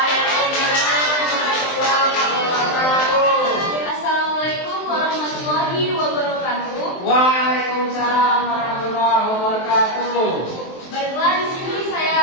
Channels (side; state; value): right; late; 23 ms